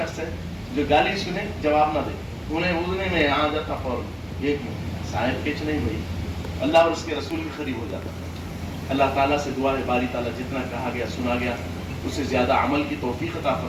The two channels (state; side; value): identical; both; correlation 1.00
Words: ہے جو گالی سنے جواب نہ دے، انہیں اڑنے میں آ جاتا فوراً، ایک منٹ صاحب کچھ نہیں بھائی، اللہ اور اس کے رسول کے قریب ہو جاتا. اللہ تعالیٰ سے دعا ہے باری تعالیٰ جتنا کہا گیا سنا گیا اس سے زیادہ عمل کی توفیق عطا